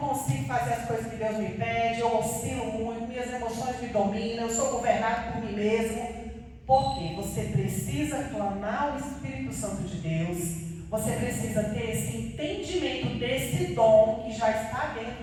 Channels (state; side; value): identical; both; correlation 1.00